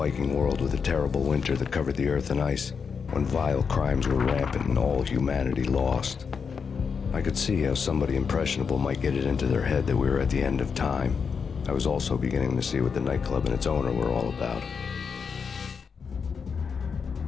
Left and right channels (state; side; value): quieter; right; 6.0 dB